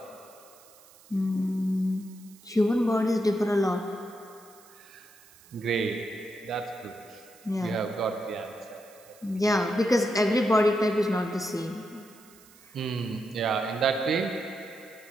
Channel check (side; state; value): right; noise; hiss, 25 dB below the sound